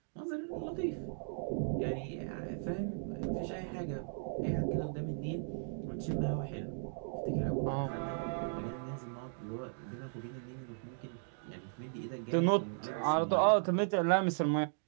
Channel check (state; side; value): silent; left; digital silence